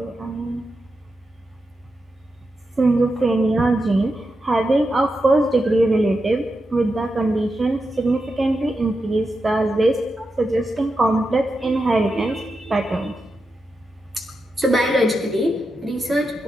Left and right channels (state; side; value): normal; both; correlation 0.88